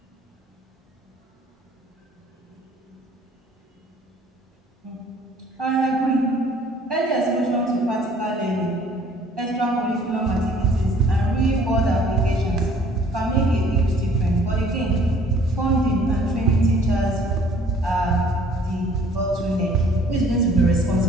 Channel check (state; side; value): normal; both; correlation 0.56